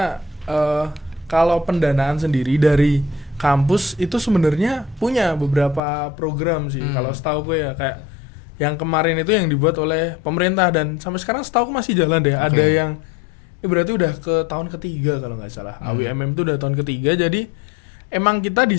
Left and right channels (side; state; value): right; drops out; at 5.8 s